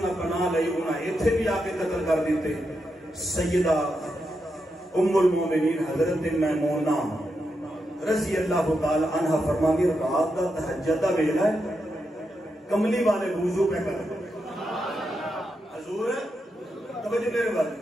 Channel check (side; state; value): both; normal; correlation 0.85